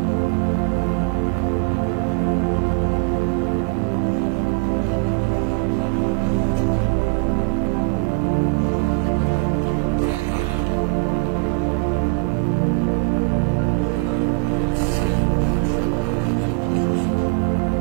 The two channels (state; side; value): quieter; left; 29.8 dB